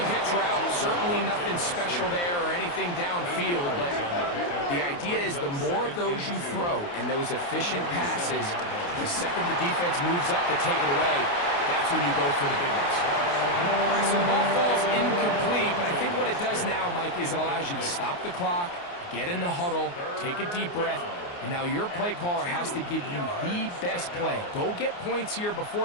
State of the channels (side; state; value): right; late; 29 ms